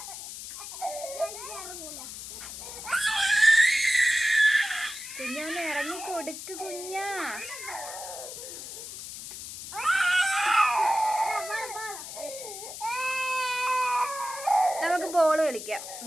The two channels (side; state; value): left; noise; hiss, 10 dB below the sound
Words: കുഞ്ഞൊന്ന് ഇറങ്ങി കൊടുക്ക് കുഞ്ഞ. നമുക്ക് ബോള് കളിക്കാം